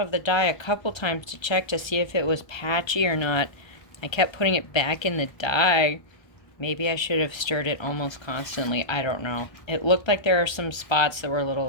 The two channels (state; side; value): late; right; 1.3 ms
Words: the dye a couple times to check to see if it was patchy or not. I kept putting it back in the dye. Maybe I should have stirred it almost constantly. I don't know. It looked like there are some spots that were a little